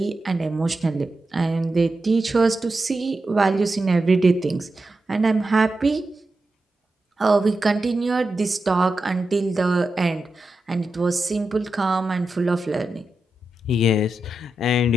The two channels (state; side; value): normal; both; correlation 0.90